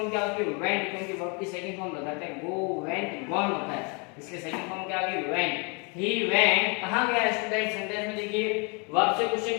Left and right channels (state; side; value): quieter; right; 33.0 dB